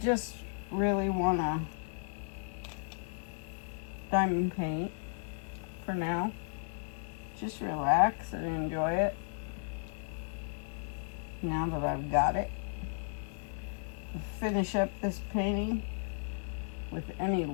really want to diamond paint for now. Just relax and enjoy it. Now that I've got it, I'll finish up this painting with any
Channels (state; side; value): silent; right; digital silence